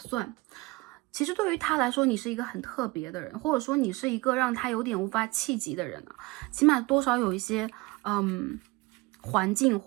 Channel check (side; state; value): left; quieter; 23.7 dB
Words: 其实对于他来说，你是一个很特别的人，或者说你是一个让他有点无法企及的人啊，起码多少有一些环境